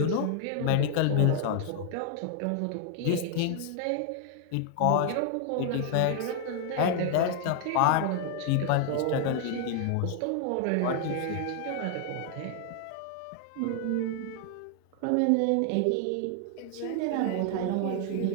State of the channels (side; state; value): both; different; correlation 0.00